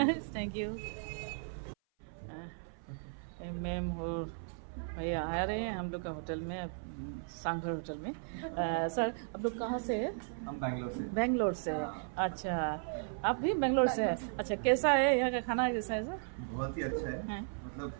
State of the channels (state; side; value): silent; left; 54 dB below the other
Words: थैंक यू। मैम और भैया आ रहे हैं हम लोग का होटल में, सांघर होटल में। सर आप लोग कहाँ से हैं? हम बैंगलोर से। बेंगलोर से। अच्छा, आप भी बेंगलोर से हैं? अच्छा, कैसा है यहाँ का खाना, कैसा है सर? बहुत ही अच्छा है। हैं? मतलब